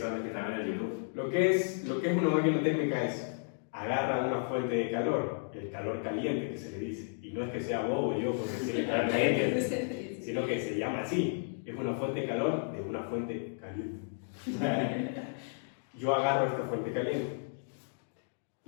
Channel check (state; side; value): silent; right; digital silence